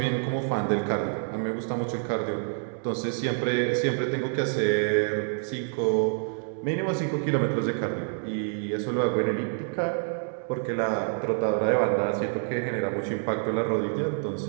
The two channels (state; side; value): silent; left; 59 dB below the other